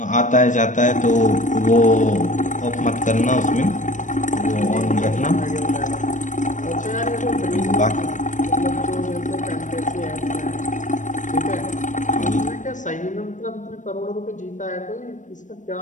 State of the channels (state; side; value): late; right; 0.36 ms